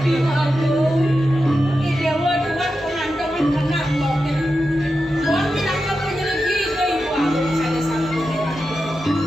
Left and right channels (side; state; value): both; normal; correlation 0.90